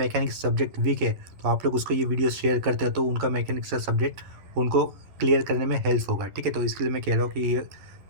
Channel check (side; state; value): left; late; 11 ms